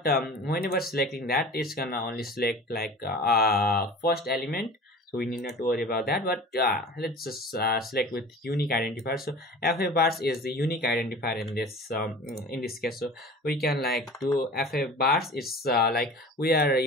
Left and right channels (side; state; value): both; normal; correlation 0.39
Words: whenever selecting that, it's gonna only select like first element, so we need not to worry about that. But let's just select with unique identifier. So fa bars is the unique identifier in this case. So we can like do fa bars. It's like we are